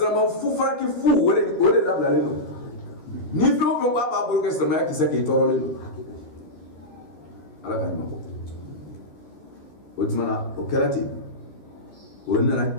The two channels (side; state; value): right; late; 13 ms